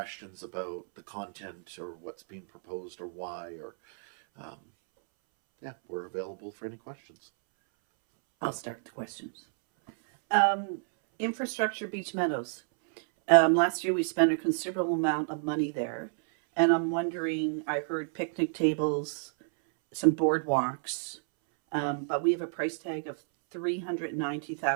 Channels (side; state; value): left; silent; 58 dB below the other